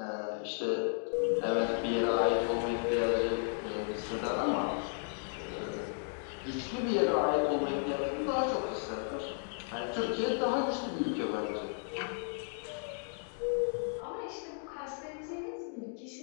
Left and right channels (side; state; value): right; silent; 55 dB below the other